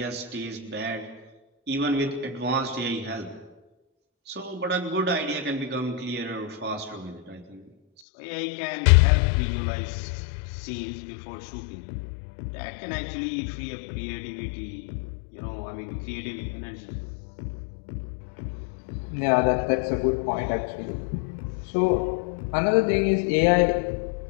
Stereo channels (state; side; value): drops out; right; at 8.0 s